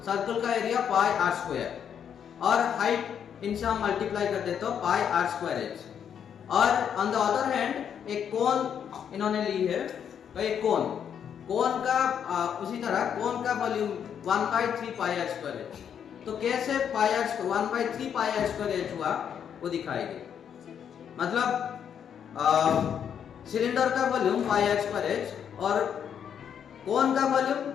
सर्कल का एरिया पाई आर स्क्वायर, और हाइट इनसे हम मल्टीप्लाई कर देते हो पाई आर स्क्वायर एच। और ऑन द अदर हैंड एक कोन इन्होंने ली है, तो एक कोन का उसी तरह कोन का volume 1/3 pi r square h. तो कैसे pi r 1/3 pi r square h हुआ वो दिखाएंगे। मतलब सिलेंडर का volume pi r square h और कोन का volume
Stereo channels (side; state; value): right; quieter; 8.3 dB